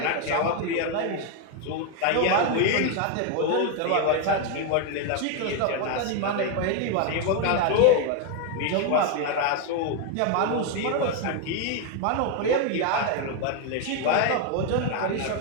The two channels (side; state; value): both; different; correlation 0.01